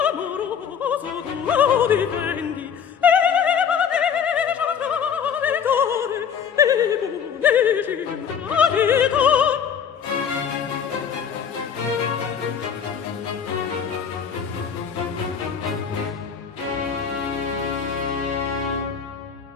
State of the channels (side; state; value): right; quieter; 7.4 dB